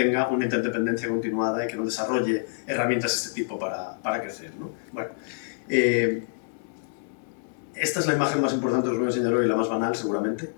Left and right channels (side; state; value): right; silent; digital silence